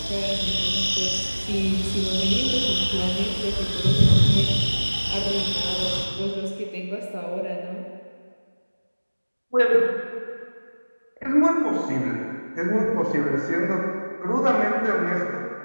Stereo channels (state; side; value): inverted; both; correlation -1.00